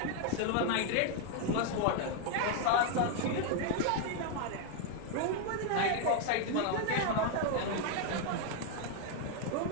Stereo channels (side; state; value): both; different; correlation 0.00